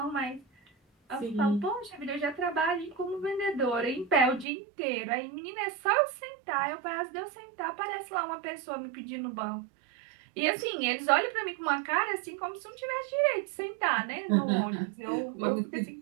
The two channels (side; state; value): left; drops out; at 4.5 s